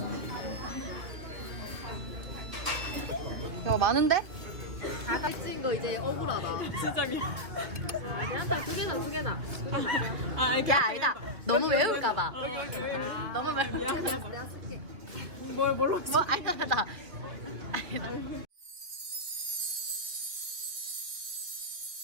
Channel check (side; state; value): left; late; 2.5 ms